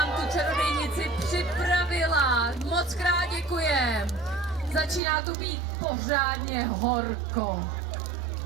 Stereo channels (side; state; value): left; drops out; at 5.0 s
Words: tu čarodějnici připravila. Moc krát děkujem. Začíná tu být pořádně horko.